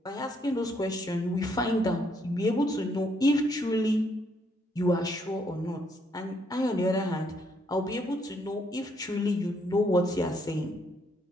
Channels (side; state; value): both; normal; correlation 0.72